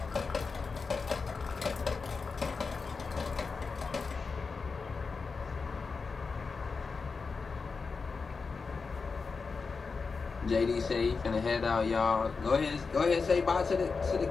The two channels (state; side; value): quieter; right; 4.7 dB